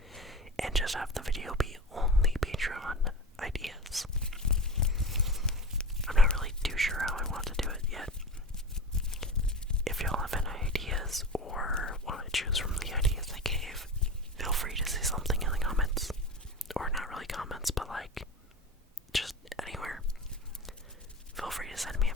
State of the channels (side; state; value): both; normal; correlation 0.29